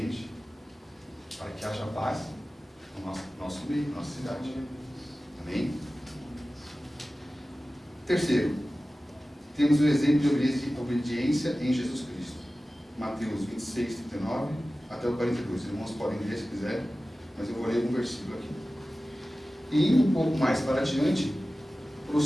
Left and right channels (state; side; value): normal; both; correlation 0.96